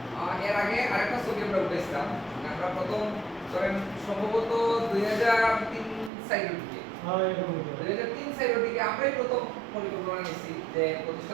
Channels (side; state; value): left; drops out; at 6.1 s